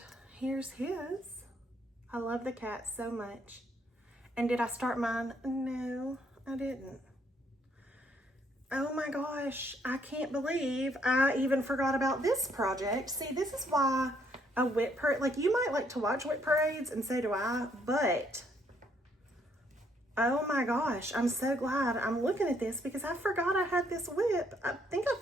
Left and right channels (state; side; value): normal; both; correlation 0.69